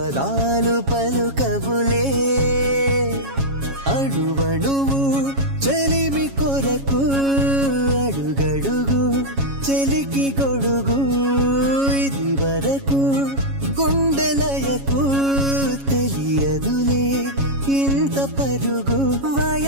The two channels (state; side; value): late; left; 7.3 ms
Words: పలుకవులే అడువడువు చెలిమి కొరకు అడుగడుగు చెలికి గొడుగు ఇది వరకు గుండెలయకు తెలియదులే ఇంత పరుగు